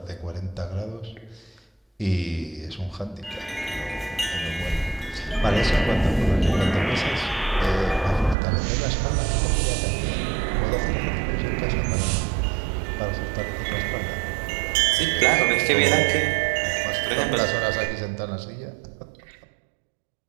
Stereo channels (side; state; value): left; drops out; at 8.3 s